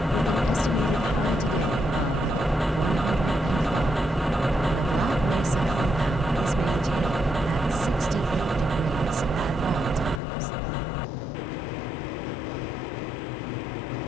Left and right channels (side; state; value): right; drops out; at 10.2 s